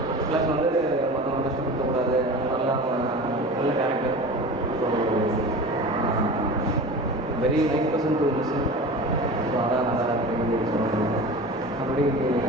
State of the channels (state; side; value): normal; both; correlation 0.34